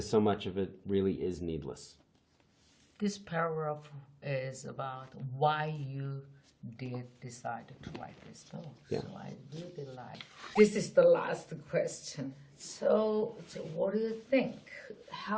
so much of it really is needless. This paragraph is about why you did decide to write this book. Yeah. So I really like. This is the last question. So what do you think?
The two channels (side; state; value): both; identical; correlation 1.00